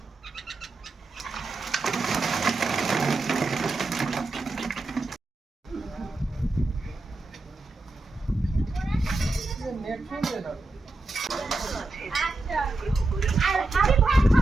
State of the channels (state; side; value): quieter; left; 3.0 dB